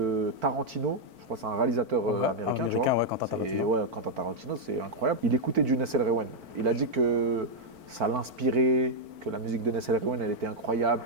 Tarantino, je crois que c'est un réalisateur américain, tu vois. Ouais, Quentin Et Tarantino. ouais, Quentin Tarantino, c'est incroyable. Il écoutait du Nassel Rewan. Il a dit que ça l'inspirait, que la musique de Nassel Rewan, elle était incroyable,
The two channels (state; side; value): late; left; 4.5 ms